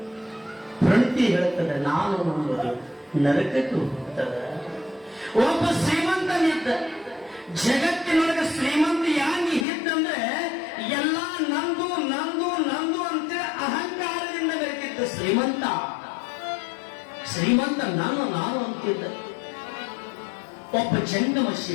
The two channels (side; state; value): right; drops out; at 9.7 s